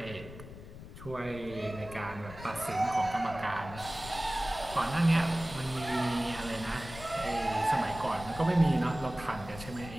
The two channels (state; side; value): noise; left; rumble, 14 dB below the sound